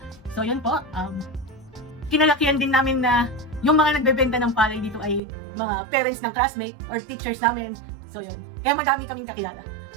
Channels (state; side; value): drops out; left; at 5.2 s